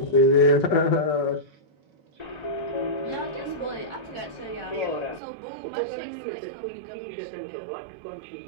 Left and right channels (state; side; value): drops out; left; at 5.2 s